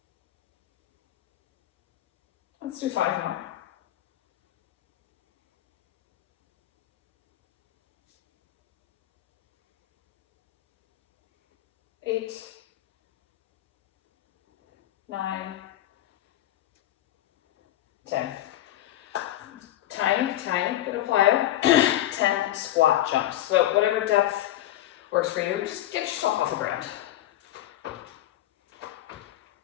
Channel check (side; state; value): right; quieter; 13.8 dB